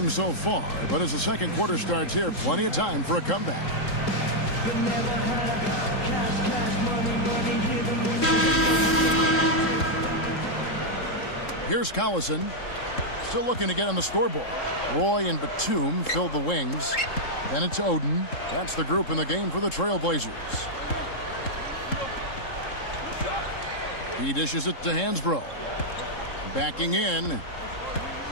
so far, but as the second quarter starts here, plenty of time for a comeback. Here's Collison, still looking to get on the scoreboard. Roy and Batum fill the wings. Then it's Oden. That's the group in the game for the Trailblazers. He dishes it to Hansbrough. Backing in.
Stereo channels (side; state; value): right; late; 3.7 ms